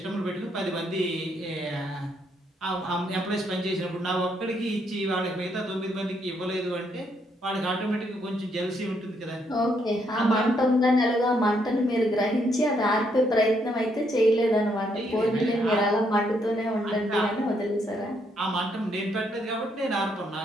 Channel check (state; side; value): normal; both; correlation 0.74